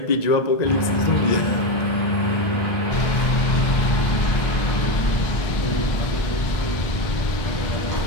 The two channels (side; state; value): right; late; 1.9 ms